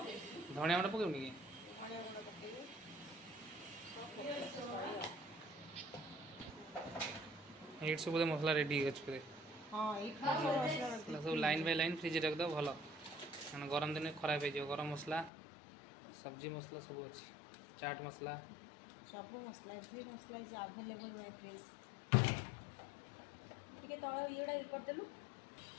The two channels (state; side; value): drops out; right; at 15.3 s